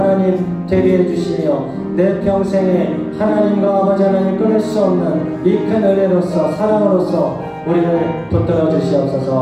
되게 해주시며 내 평생에 하나님과 아버지 하나님 끊을 수 없는 이 큰 은혜로서 사랑으로서 우리를 붙들어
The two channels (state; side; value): identical; both; correlation 1.00